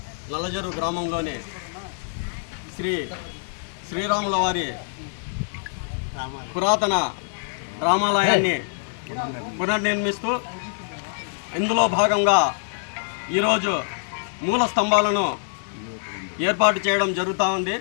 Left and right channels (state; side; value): silent; right; digital silence